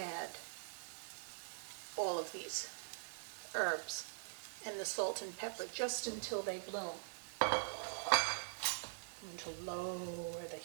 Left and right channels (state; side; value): silent; left; digital silence